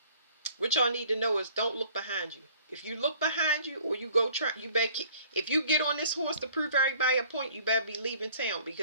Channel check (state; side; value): inverted; both; correlation -0.55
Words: What y'all need to know is don't look behind you. If you look behind you, or you go try, you better if you get on this horse to prove everybody a point, you better be leaving town,